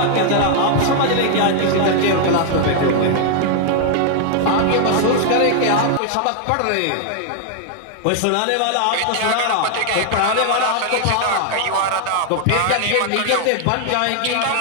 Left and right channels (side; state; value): both; different; correlation 0.00